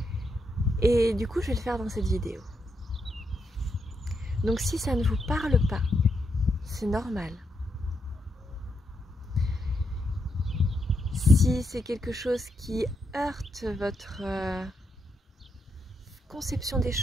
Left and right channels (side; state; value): both; normal; correlation 0.81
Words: Et du coup, je vais le faire dans cette vidéo. Donc si ça ne vous parle pas, c'est normal. Si c'est quelque chose qui heurte votre conception des